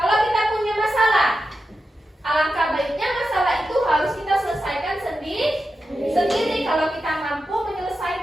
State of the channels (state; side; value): normal; both; correlation 0.90